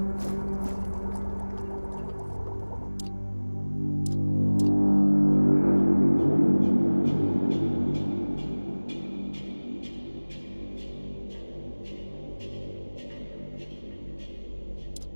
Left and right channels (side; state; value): both; inverted; correlation -1.00